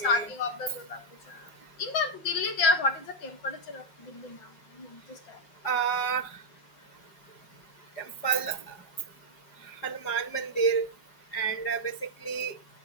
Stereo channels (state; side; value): late; right; 5.4 ms